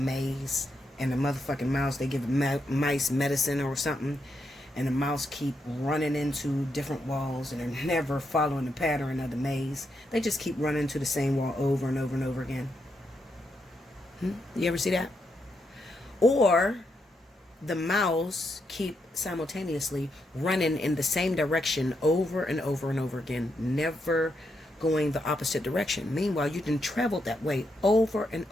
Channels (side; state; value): both; normal; correlation 0.81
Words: and the motherfucking mouse, they give mice medicine or something, and the mouse keep running into different walls, and they're never following the pattern of the maze. They just keep running into the same wall over and over and over again. You ever see that? Or the mouse keep simultaneously running in the same direction over and over and over again, never going the opposite direction. Meanwhile, you done traveled that way over and